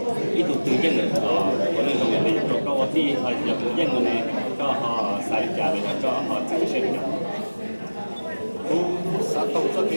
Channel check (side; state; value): both; inverted; correlation -1.00